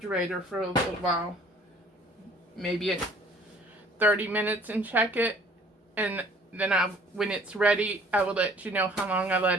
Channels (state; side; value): normal; both; correlation 0.54